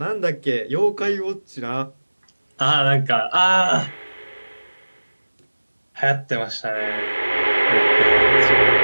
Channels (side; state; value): both; inverted; correlation -1.00